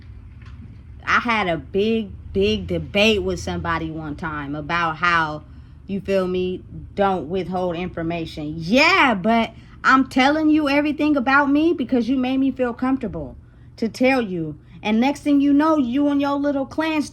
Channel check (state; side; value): identical; both; correlation 1.00